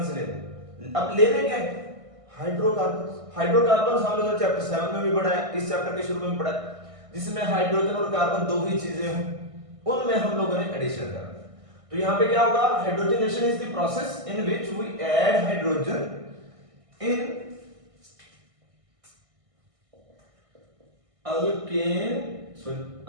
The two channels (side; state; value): left; late; 1.6 ms